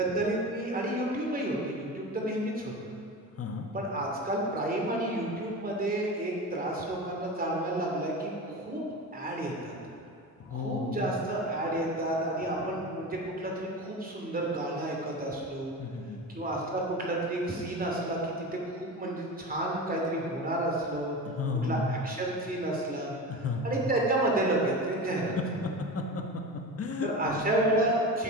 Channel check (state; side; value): normal; both; correlation 0.28